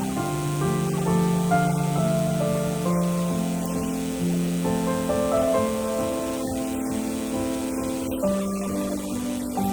boss or your manager or supervisor is not going to say, hey, you need to be frying the chicken. You need to be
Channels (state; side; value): identical; both; correlation 1.00